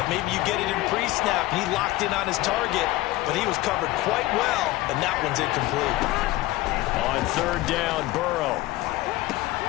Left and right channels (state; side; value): quieter; right; 17.8 dB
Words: Maybe you get it in pre-snap. He locked in on his target, but he was covered quite well, and that one's incomplete. On third down, Burrow.